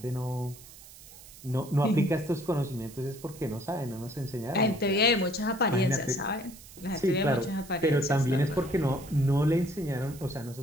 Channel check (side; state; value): right; noise; hiss, 19 dB below the sound